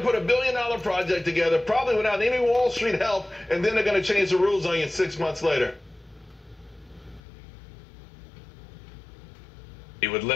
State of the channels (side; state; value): right; drops out; at 7.2 s